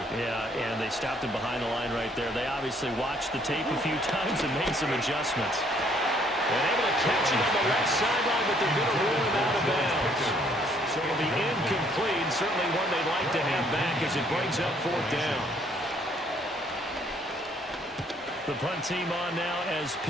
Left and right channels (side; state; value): both; normal; correlation 0.65